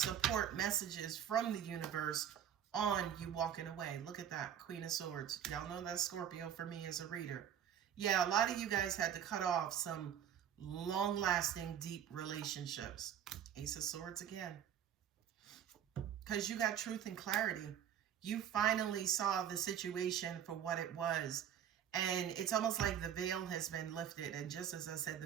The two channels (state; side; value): quieter; left; 9.5 dB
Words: messages from the universe on you walking away. Look at that, Queen of Swords. Y'all know that's Scorpio for me as a reader. Yeah, a lot of you guys had to cut off some long-lasting, deep relationships. Ace of Swords again. Because you got truth and clarity. You finally saw the situation for what it was. And it's almost like the veil has been lifted. And just as I said,